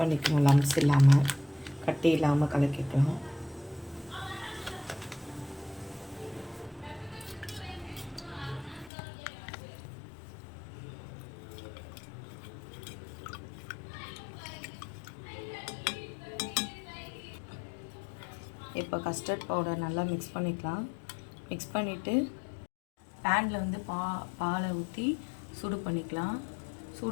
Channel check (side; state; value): right; drops out; at 8.9 s